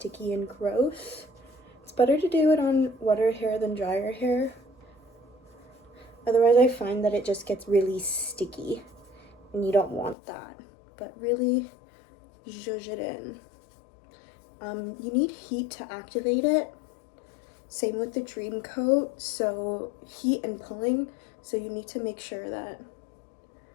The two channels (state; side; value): drops out; right; at 10.2 s